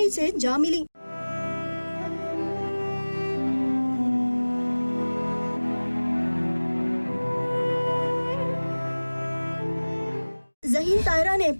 سے جا ملی۔ ذہین طاہرہ نے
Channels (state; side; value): inverted; both; correlation -1.00